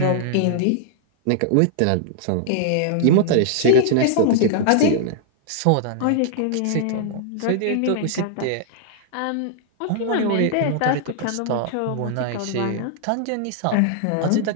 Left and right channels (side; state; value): both; different; correlation -0.01